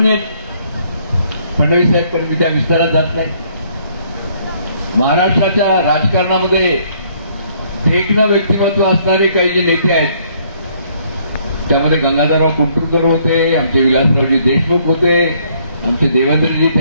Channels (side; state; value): both; inverted; correlation -0.66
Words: आहेत फडणवीस साहेब, पण मी त्या विस्तारात जात नाही. महाराष्ट्राच्या राजकारणामध्ये देखणं व्यक्तिमत्व असणारे काही जे नेते आहेत, त्यामध्ये गंगाधरराव कुंटुरकर होते, आमचे विलासरावजी देशमुख होते, आमचे देवेंद्रजी